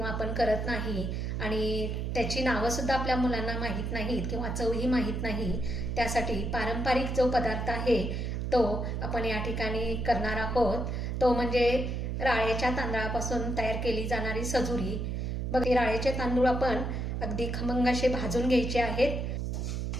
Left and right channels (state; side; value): noise; right; hum, 2 dB below the sound